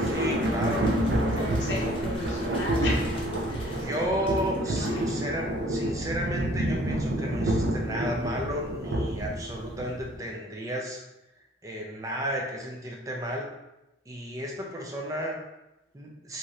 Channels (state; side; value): normal; both; correlation 0.55